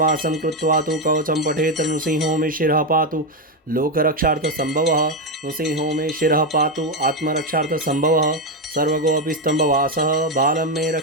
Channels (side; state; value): both; normal; correlation 0.08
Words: कृत्वा तु कवचं पठेत् नृसिंहो मे शिरः पातु लोकरक्षार्थसम्भवः नृसिंहो मे शिरः पातु आत्मरक्षार्थसम्भवः सर्वगोऽपि स्तम्भवासः बालं मे